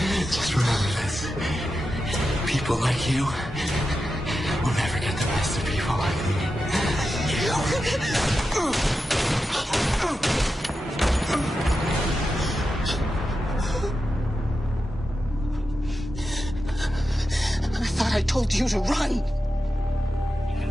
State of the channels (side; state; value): both; normal; correlation 0.90